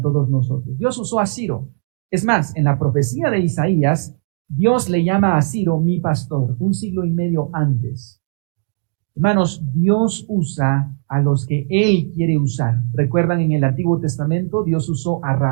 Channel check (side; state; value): left; silent; digital silence